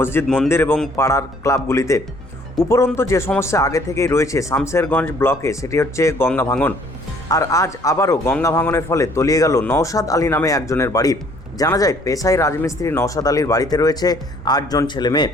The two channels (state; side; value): normal; both; correlation 0.59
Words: মন্দির এবং পাড়ার ক্লাবগুলিতে। উপরন্তু যে সমস্যা আগে থেকেই রয়েছে শামশেরগঞ্জ ব্লকে, সেটি হচ্ছে গঙ্গা ভাঙন। আর আজ আবারও গঙ্গা ভাঙনের ফলে তলিয়ে গেল নওশাদ আলী নামে একজনের বাড়ি। জানা যায়, পেশায় রাজমিস্ত্রি নওশাদ আলীর বাড়িতে রয়েছে 8 জন ছেলে মেয়ে।